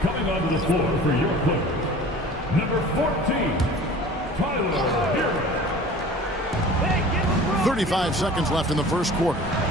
Coming onto the floor for your Clippers, number 14, Tyler Hero. 35 seconds left in the first quarter.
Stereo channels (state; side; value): normal; both; correlation 0.43